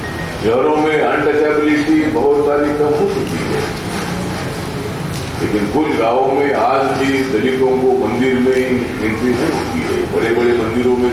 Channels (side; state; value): both; identical; correlation 1.00